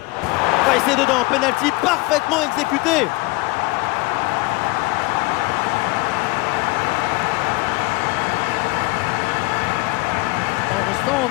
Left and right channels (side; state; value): right; quieter; 23.1 dB